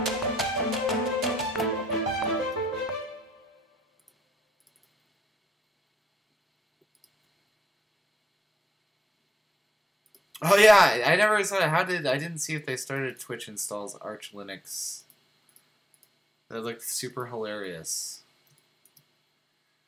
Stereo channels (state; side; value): normal; both; correlation 0.80